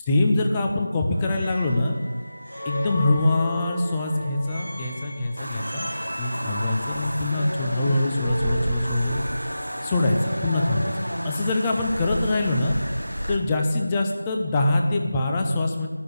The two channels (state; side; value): inverted; both; correlation -0.91